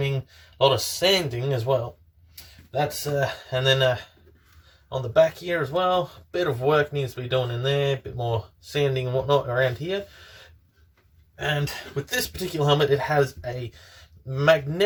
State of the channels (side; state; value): both; identical; correlation 1.00